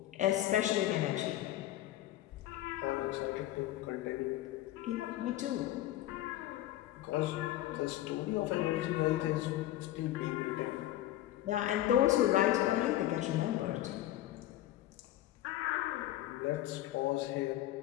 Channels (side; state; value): right; quieter; 14.2 dB